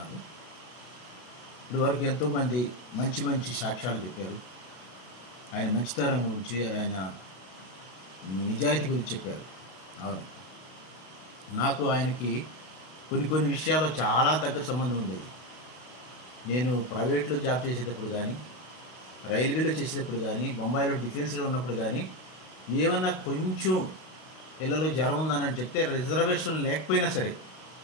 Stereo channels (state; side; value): late; right; 32 ms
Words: ఇప్పుడు వరకు ఎంతోమంది మంచి మంచి సాక్ష్యాలు చెప్పారు. ఆయన మంచితనం గురించి, ఆయన నిజాయితీ గురించి చెప్పారు. అవును, నాకు ఆయనకి కొన్ని విషయాల్లో చాలా దగ్గర సంబంధం ఉండేది. నేను ప్రైవేట్లో జాబ్ చేసేటప్పుడు కానీ, రైల్వేలో చేసేటప్పుడు కానీ, బొంబాయిలో డిఫెన్స్లో ఉన్నప్పుడు కానీ, ఏమన్నా కొంచెం పిల్లలు జ్వరం ఉందని చెప్తే రిజర్వేషన్ లేకపోయినా సరే,